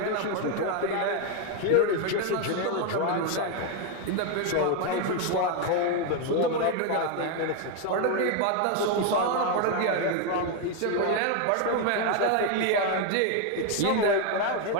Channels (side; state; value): both; different; correlation 0.01